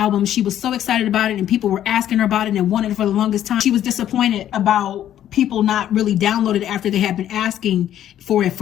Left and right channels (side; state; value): right; quieter; 11.3 dB